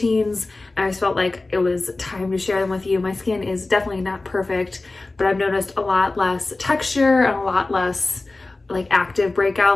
and I just felt like it was time to share them with you. My skin is definitely not perfect, but I've noticed a lot less texture and a lot less like active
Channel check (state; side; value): quieter; right; 3.2 dB